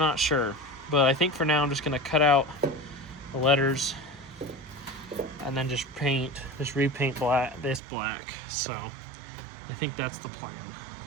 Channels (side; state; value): left; drops out; at 7.8 s